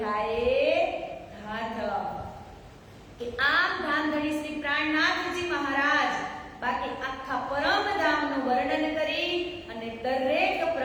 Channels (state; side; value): identical; both; correlation 1.00